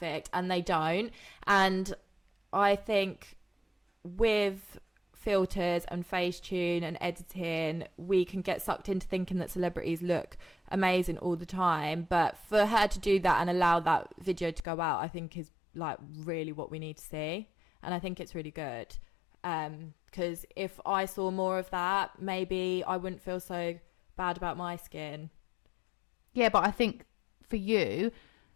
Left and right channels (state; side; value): drops out; right; at 14.6 s